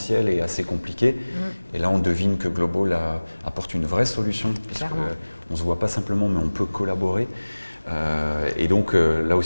est assez compliqué. Et là, on devine que Global apporte une vraie solution, puisqu'on ne se voit pas simplement, mais on peut collaborer. Et donc, là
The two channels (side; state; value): both; inverted; correlation -1.00